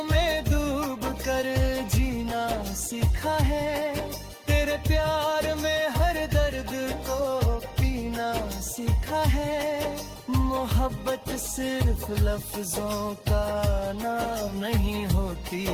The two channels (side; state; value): both; identical; correlation 1.00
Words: में डूब कर जीना सीखा है, तेरे प्यार में हर दर्द को पीना सीखा है। मोहब्बत सिर्फ लफ्जों का नाम नहीं होती,